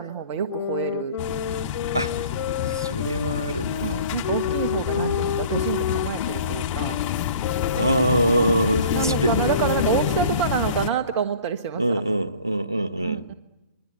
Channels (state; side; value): inverted; both; correlation -0.46